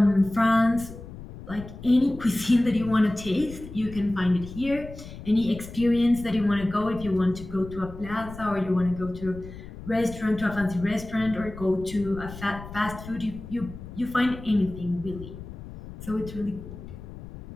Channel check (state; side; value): noise; left; rumble, 13 dB below the sound